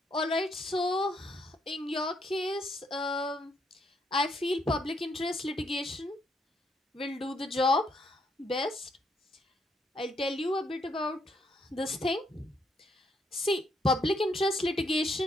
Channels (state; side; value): normal; both; correlation 0.73